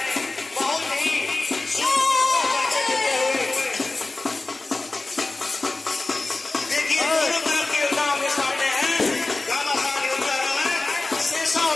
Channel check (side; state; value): right; quieter; 3.2 dB